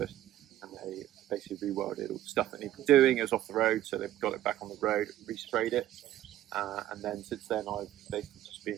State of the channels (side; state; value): left; quieter; 13.1 dB